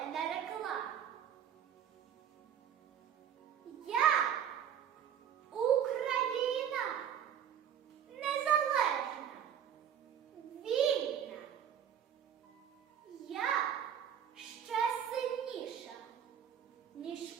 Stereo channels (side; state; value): left; quieter; 9.1 dB